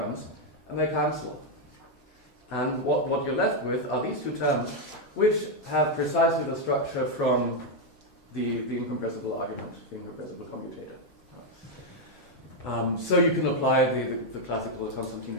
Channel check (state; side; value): normal; both; correlation 0.01